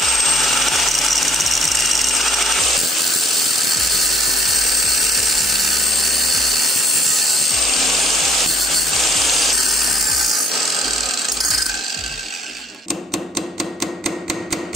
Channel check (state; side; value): normal; both; correlation 0.62